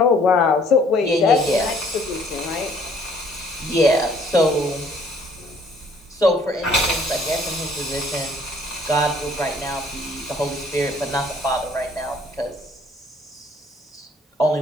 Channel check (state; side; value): normal; both; correlation 0.59